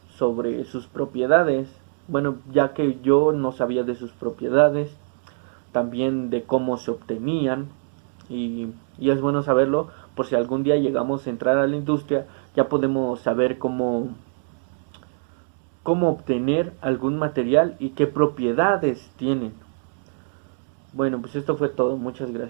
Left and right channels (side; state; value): left; silent; 63 dB below the other